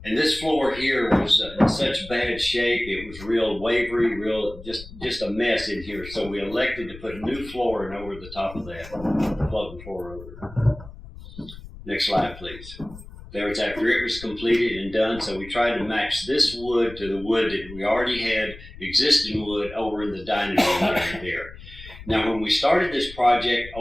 And this floor here was in such bad shape, it was real wavery, just a mess in here. So we elected to put new flooring over the top of that, floating floor over. Next slide, please. There was after it was completed and done, so we tried to match this wood to the wood that we already had, existing wood, over in the dining room area there. Now, when we started this project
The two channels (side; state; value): left; noise; rumble, 16 dB below the sound